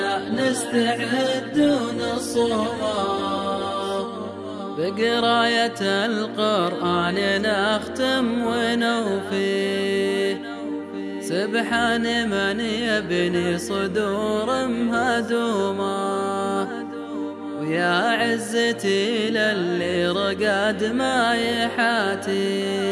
نستعد ونصومه، بقراية القرآن نختم ونوفي، سبحان من يبني صدور مهدومة، ويا عزتي للي رقد ما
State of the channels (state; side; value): identical; both; correlation 1.00